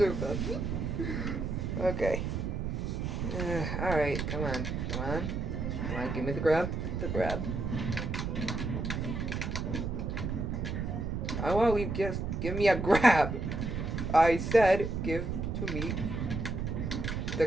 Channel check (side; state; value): right; noise; rumble, 2 dB below the sound